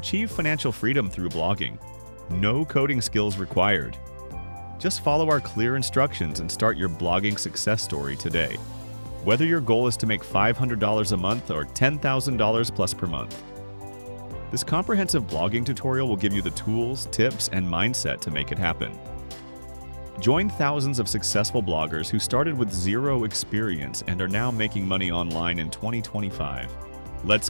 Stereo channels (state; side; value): inverted; both; correlation -1.00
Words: financial freedom through blogging. No coding skills required. Just follow our clear instructions and start your blogging success story today. Whether your goal is to make $500 a month or $10,000 plus per month. This comprehensive blogging tutorial will give you the tools, tips, and mindset to make it happen. Join thousands of successful bloggers who started with zero experience and are now making money online in 2025. Let's